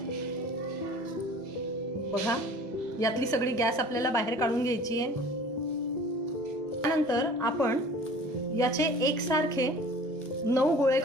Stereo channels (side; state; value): both; normal; correlation 0.46